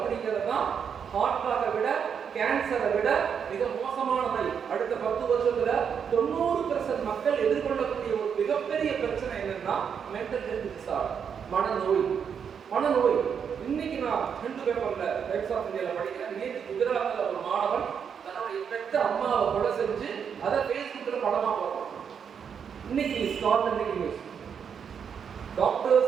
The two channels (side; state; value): left; quieter; 7.2 dB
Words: தான் ஹார்ட்டாக விட, கேன்சரை விட மிக மோசமான நோய். அடுத்த 10 வருஷத்துல 90% மக்கள் எதிர்கொள்ளக்கூடிய ஒரு மிகப்பெரிய பிரச்சனை என்னன்னா மென்டல் ஹெல்த் டிசார்டர், மனநோய். இன்னைக்கு நான் ஹிந்து பேப்பர்ல டைம்ஸ் ஆஃப் இந்தியால படிக்கிறேன். நேற்று குஜராத்ல ஒரு மாணவன் ஆத்தென்டிக் நியூஸ்.